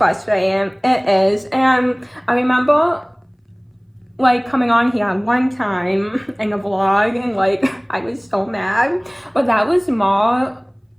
It is. And I remember like coming on here one time in a vlog, and like I was so mad, but that was more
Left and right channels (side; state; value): both; identical; correlation 1.00